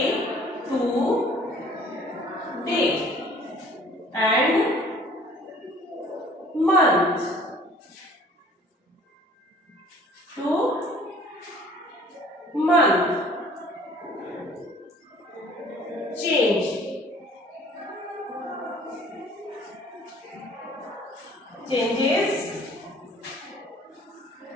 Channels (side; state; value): both; normal; correlation 0.53